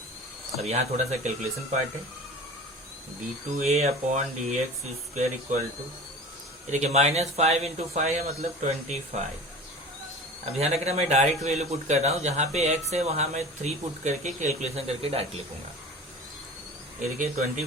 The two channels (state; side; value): normal; both; correlation 0.37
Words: अब यहाँ थोड़ा सा कैलकुलेशन पार्ट है। d2a upon dx square equal to, देखिए -5 इंटू 5 है मतलब 25। अब ध्यान रखना मैं डायरेक्ट वैल्यू पुट कर रहा हूँ, जहाँ पे x है वहाँ मैं 3 पुट करके कैलकुलेशन करके डायरेक्ट लिखूंगा। ये देखिए